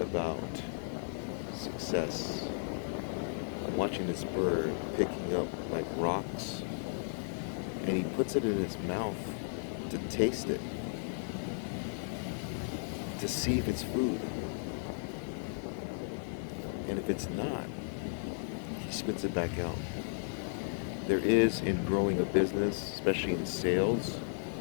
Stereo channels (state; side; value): silent; right; digital silence